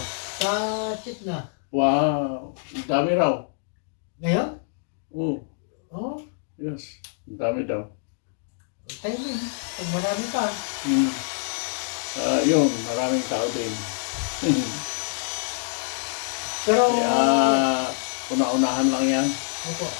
Sa Chitna. Wow, ang dami raw. Ngayon? Oh, Oo. yes, ang dami daw. Timing. Pag marami pa. Yun, maraming tao din. Pero, Kaya, una-unahan lang yan. opo.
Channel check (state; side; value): silent; right; digital silence